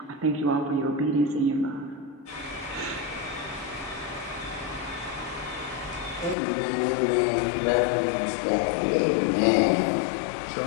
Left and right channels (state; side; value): drops out; right; at 6.4 s